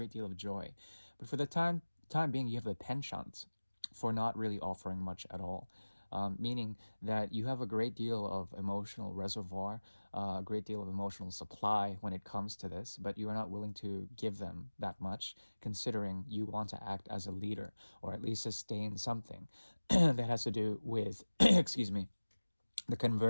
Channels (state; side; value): inverted; both; correlation -1.00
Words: deal of joy. But for the time being, you have a penchant for not really offering much at all. Meaning that you have a great deal of emotional reservoir, a great deal of emotional supply when it comes to this, but you are not willing to give them that much, considering you want to act as a leader or at least sustain something that has to do with, excuse me, the